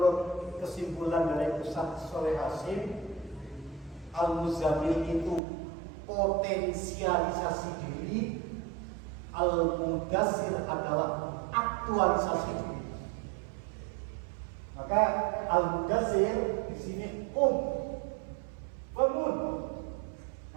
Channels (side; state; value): left; drops out; at 5.4 s